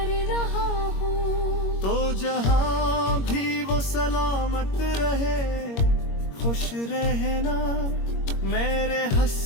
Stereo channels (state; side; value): late; right; 21 ms